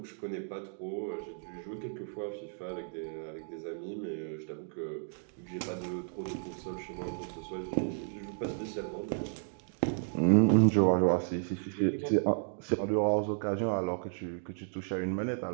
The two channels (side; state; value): left; silent; digital silence